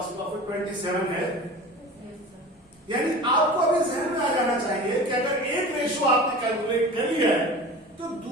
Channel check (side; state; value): both; normal; correlation 0.36